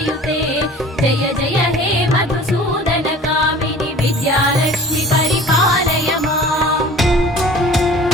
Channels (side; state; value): both; normal; correlation 0.44